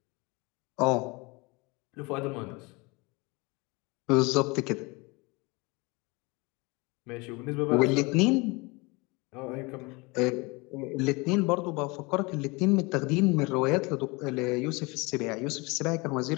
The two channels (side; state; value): right; quieter; 26.4 dB